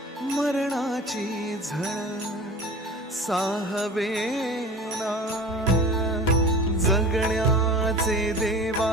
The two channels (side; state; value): both; normal; correlation 0.39